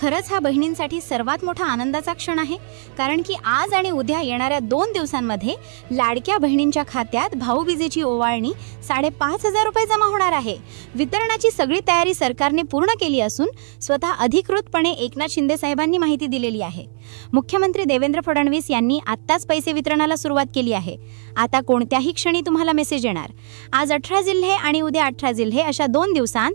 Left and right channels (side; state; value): left; silent; 56 dB below the other